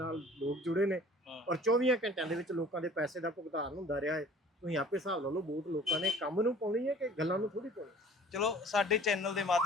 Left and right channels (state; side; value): normal; both; correlation 0.48